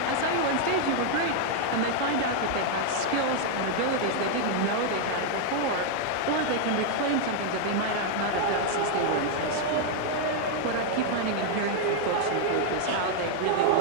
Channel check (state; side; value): different; both; correlation 0.00